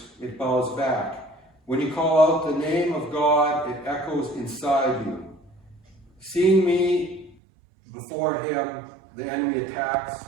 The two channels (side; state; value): left; drops out; at 7.4 s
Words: it bows back. When you call out the name of God, it echoes inside you. Seeing me before him, the enemy attacks,